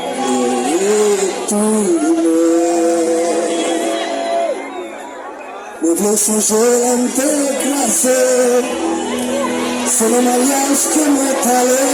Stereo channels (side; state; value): both; identical; correlation 1.00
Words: Me songer à me déclasser, c'est le mariage que m'est allé,